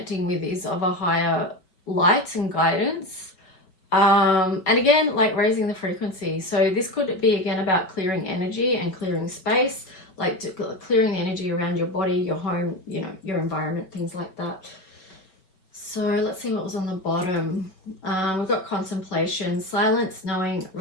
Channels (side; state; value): right; late; 5.3 ms